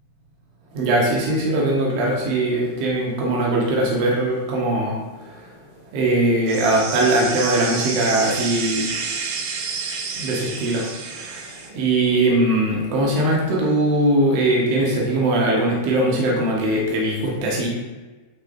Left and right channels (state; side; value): late; left; 15 ms